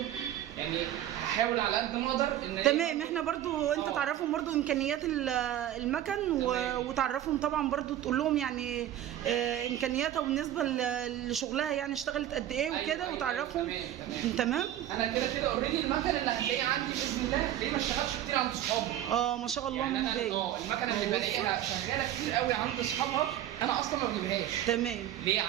يعني هحاول على قد ما اقدر ان تمام. احنا برضو انت تعرفهم برضو امكانيات المكن وتعرفهم طبعا برضو، تقول لهم يعني امكانياتها بالنسبه لشغلها، يعني اشتغلت قد ايه وكده وتعرفهم. تمام. انا كده اوريدي المكن اللي هتلاقيه عندي باذن الله هتلاقيه ما اشتغلش كتير عند اصحابي. ما شاء الله يعني من بدايه. المكنه اللي بلاقيها شغاله كتير قوي عند اصحابها انا اصلا ما بجيبهاش. تمام. ليه؟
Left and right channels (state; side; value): quieter; left; 12.1 dB